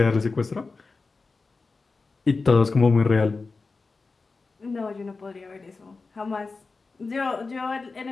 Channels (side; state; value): right; quieter; 4.1 dB